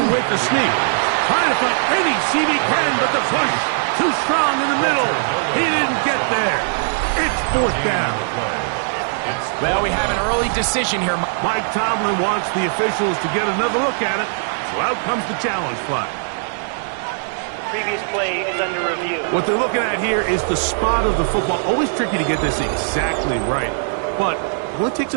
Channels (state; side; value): silent; left; digital silence